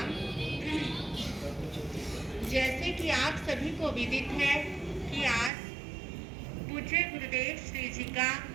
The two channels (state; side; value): drops out; left; at 5.5 s